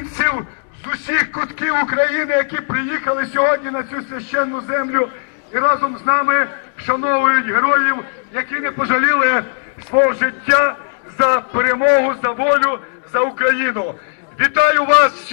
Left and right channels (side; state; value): right; silent; digital silence